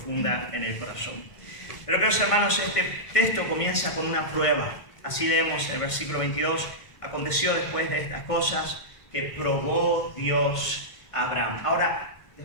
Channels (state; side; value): late; right; 1.5 ms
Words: en el corazón. Pero queridos hermanos, este texto comienza con una prueba. Así leemos el versículo 22. Aconteció después de estas cosas que probó Dios a Abraham. Ahora,